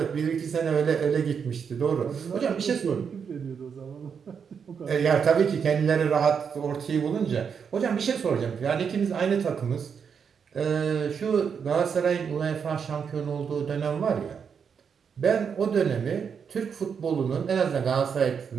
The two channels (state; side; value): quieter; left; 6.7 dB